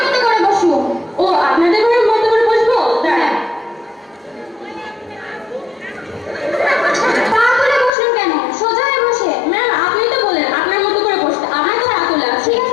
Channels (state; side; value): drops out; right; at 7.9 s